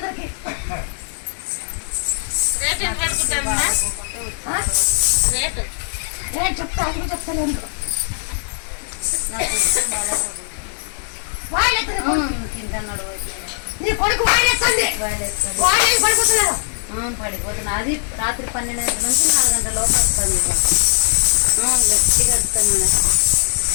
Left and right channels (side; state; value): right; silent; digital silence